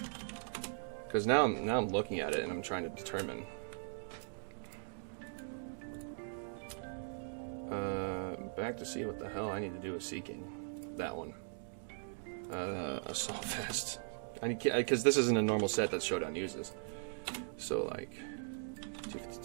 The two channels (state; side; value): silent; left; digital silence